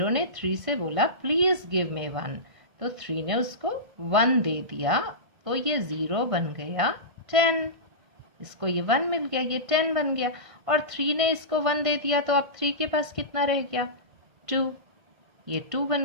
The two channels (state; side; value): late; left; 1.6 ms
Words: ने 3 से बोला प्लीज गिव मी 1, तो 3 ने उसको 1 दे दिया, तो ये 0 बन गया 10। इसको ये 1 मिल गया, ये 10 बन गया, और 3 ने इसको 1 दे दिया, तो अब 3 के पास कितना रह गया? 2, ये 2